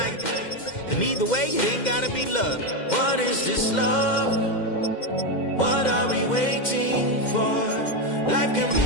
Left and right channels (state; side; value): late; right; 2.1 ms